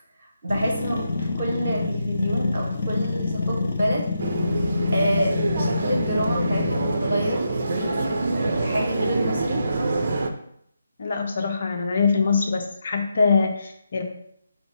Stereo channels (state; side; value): inverted; both; correlation -0.82